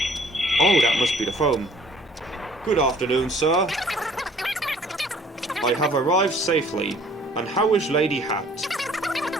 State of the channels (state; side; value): normal; both; correlation 0.56